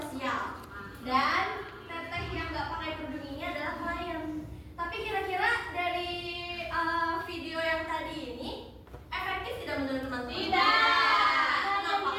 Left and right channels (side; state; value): both; identical; correlation 1.00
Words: Dan teteh yang nggak pakai kerudung ini adalah klien. Tapi kira-kira dari video yang tadi ini efektif tidak menurut teman-teman? Tidak. Kenapa?